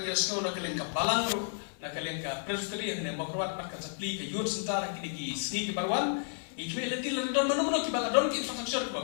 sekolah nak kelengkap balang ru nak kelengkap presbyterian yang berkuat markan supply ke youth center kini sini ke barwan ikwe leti lalu don manu ki baladon ki infrastruktur ke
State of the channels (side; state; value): right; silent; 56 dB below the other